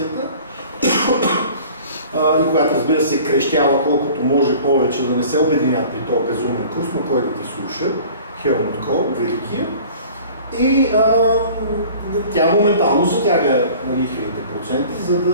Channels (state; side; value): inverted; both; correlation -0.46